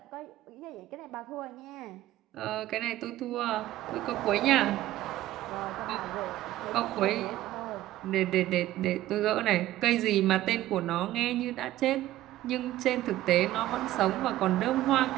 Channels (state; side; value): quieter; left; 14.9 dB